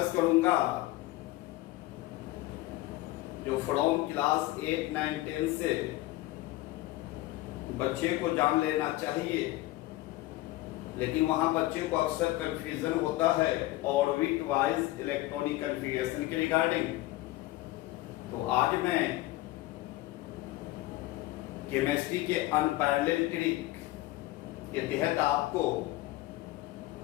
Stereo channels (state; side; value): quieter; right; 17.7 dB